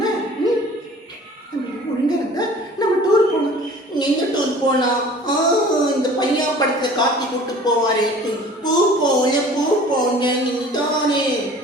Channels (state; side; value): normal; both; correlation 0.46